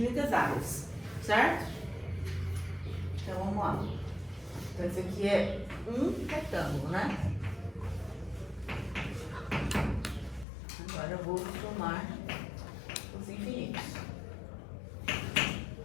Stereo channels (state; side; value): drops out; right; at 10.5 s